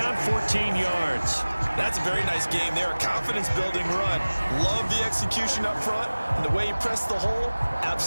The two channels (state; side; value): inverted; both; correlation -1.00